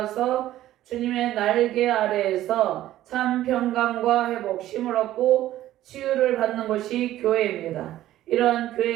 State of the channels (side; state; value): left; quieter; 13.9 dB